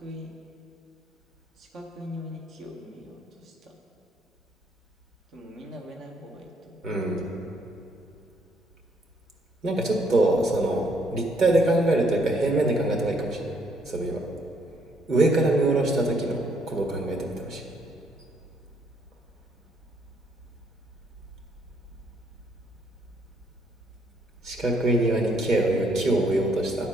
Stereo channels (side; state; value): both; normal; correlation 0.69